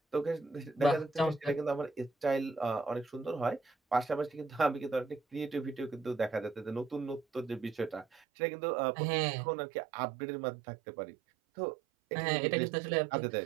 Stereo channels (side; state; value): left; drops out; at 8.2 s